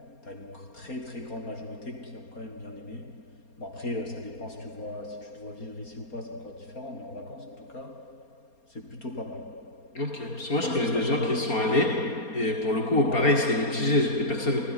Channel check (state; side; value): late; right; 4.3 ms